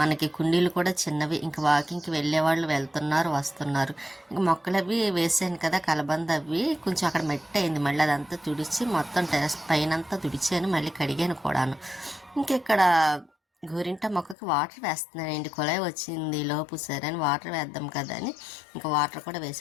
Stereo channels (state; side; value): drops out; right; at 14.4 s